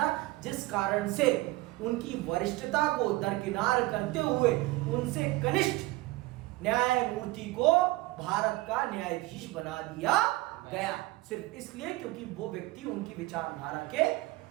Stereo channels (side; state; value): left; quieter; 19.7 dB